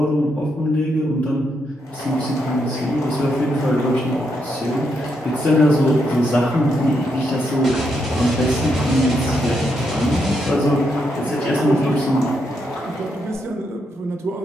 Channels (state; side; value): normal; both; correlation 0.80